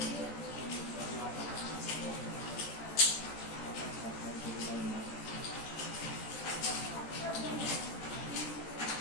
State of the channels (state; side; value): late; right; 14 ms